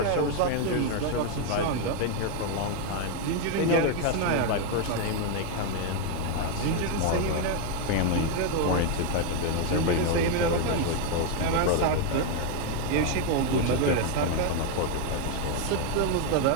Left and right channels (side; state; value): both; different; correlation 0.01